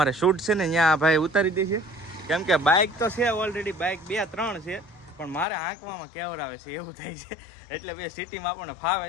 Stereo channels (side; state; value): right; drops out; at 5.5 s